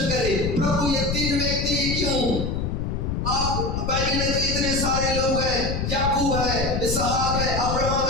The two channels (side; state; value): left; noise; rumble, 2 dB below the sound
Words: करे, प्रभु ये 3 व्यक्ति क्यों? आप बाइबल में तो इतने सारे लोग हैं, याकूब है, इसहाक है, अब्राहम